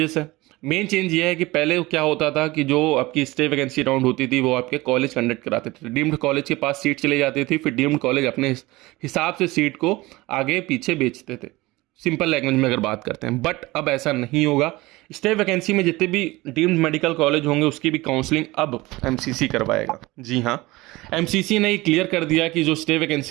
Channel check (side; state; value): left; quieter; 20.6 dB